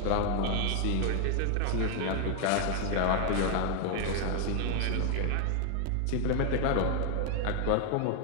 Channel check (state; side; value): different; both; correlation 0.00